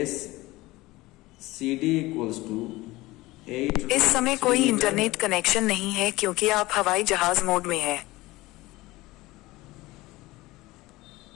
CD equals to 8। इस समय कोई इंटरनेट कनेक्शन नहीं है क्योंकि आप हवाई जहाज मोड में हैं।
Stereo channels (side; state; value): right; quieter; 19.6 dB